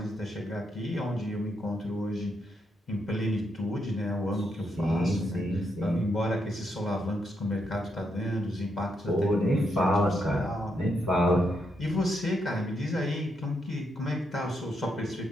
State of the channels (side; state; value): both; normal; correlation 0.80